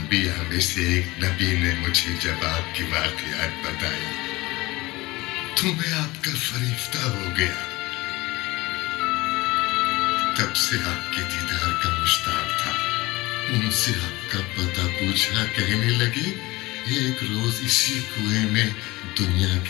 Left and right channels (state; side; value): quieter; right; 21.0 dB